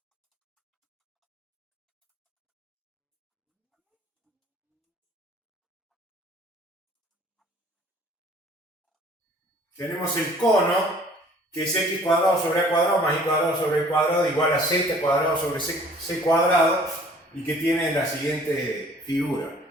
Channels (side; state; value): both; normal; correlation 0.53